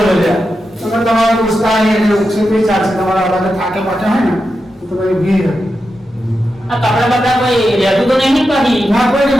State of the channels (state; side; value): normal; both; correlation 0.89